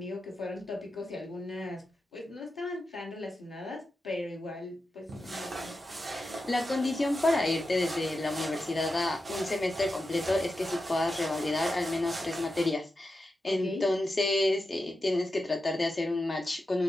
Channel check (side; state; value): both; normal; correlation 0.90